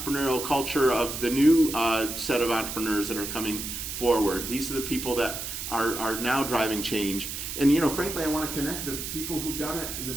culture of the new set of entrepreneurs that are coming forward. These are the people that are now driving change. And frankly, I want to connect the people who've done it and the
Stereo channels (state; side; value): noise; right; hiss, 6 dB below the sound